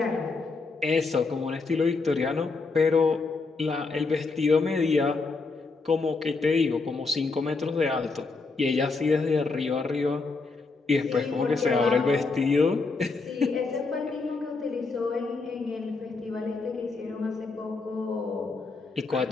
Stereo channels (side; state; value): right; quieter; 4.0 dB